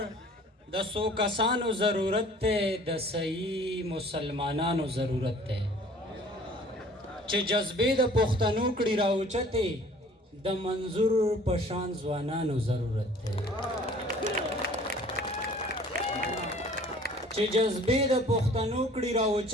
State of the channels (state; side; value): normal; both; correlation 0.51